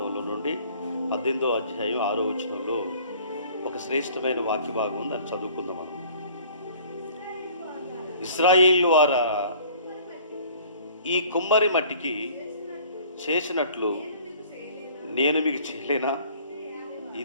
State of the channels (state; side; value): inverted; both; correlation -0.52